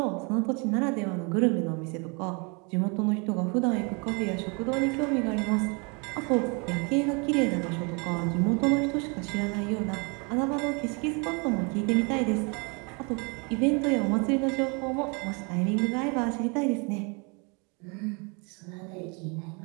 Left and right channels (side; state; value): left; quieter; 32.5 dB